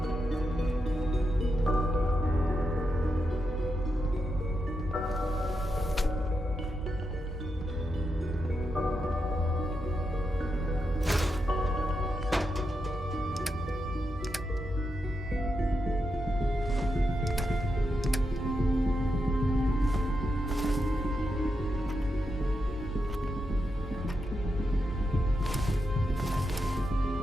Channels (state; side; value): normal; both; correlation 0.86